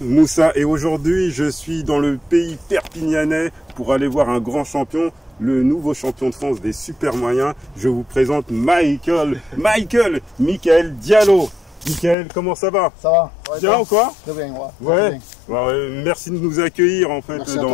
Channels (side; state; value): right; drops out; at 12.2 s